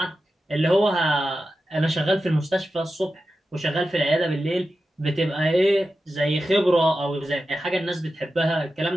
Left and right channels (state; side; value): normal; both; correlation 0.92